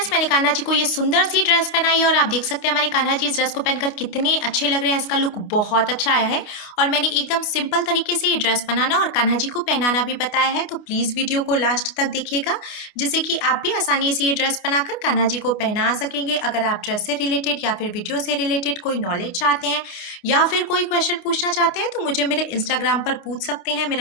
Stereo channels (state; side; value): late; right; 28 ms